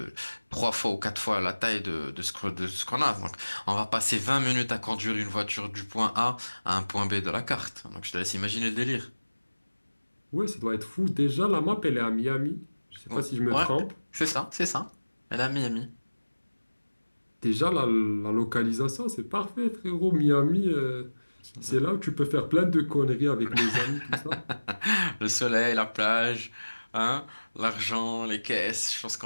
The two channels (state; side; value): inverted; both; correlation -1.00